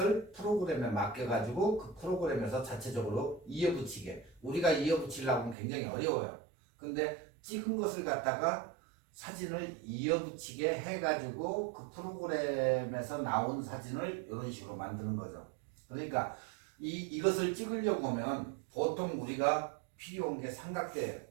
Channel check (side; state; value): left; drops out; at 5.6 s